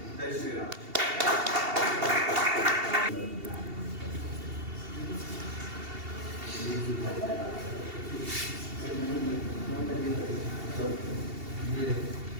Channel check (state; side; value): late; left; 2.7 ms